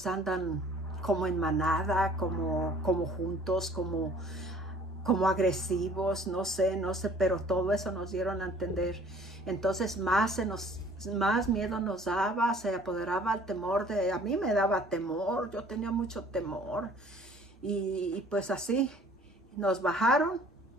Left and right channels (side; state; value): both; normal; correlation 0.53